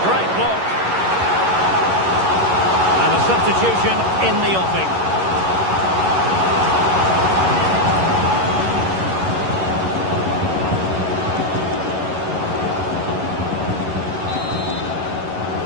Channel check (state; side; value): late; left; 11 ms